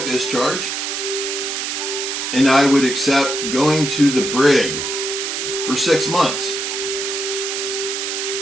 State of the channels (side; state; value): right; noise; hiss, 3 dB below the sound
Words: discharge, and I would accept going to the brig for 6 months.